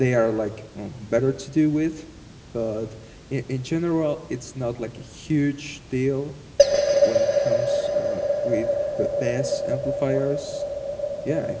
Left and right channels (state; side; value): identical; both; correlation 1.00